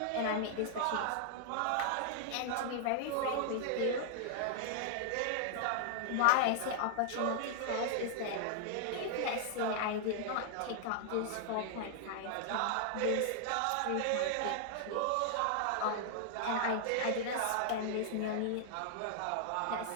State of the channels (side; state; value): both; different; correlation -0.01